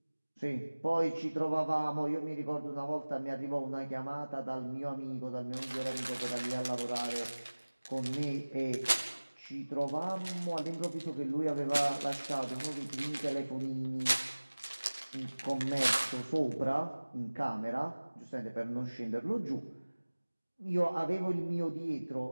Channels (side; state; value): both; inverted; correlation -1.00